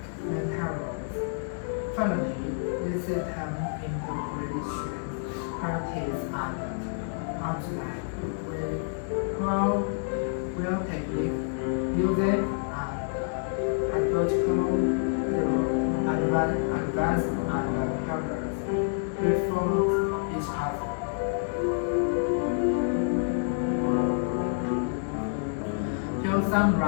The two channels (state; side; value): silent; right; digital silence